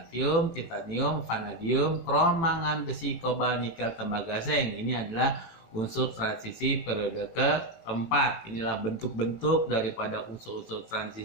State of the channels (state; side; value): late; right; 18 ms